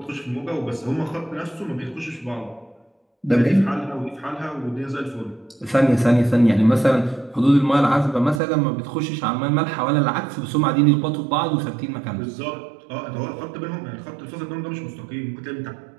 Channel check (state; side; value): drops out; left; at 8.4 s